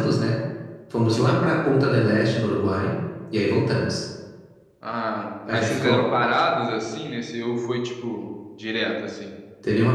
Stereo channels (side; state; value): both; identical; correlation 1.00